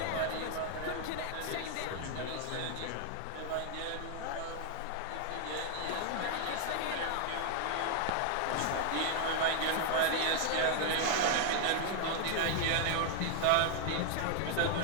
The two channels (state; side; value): different; both; correlation 0.00